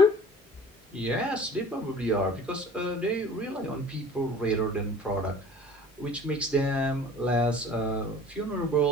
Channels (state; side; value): normal; both; correlation 0.46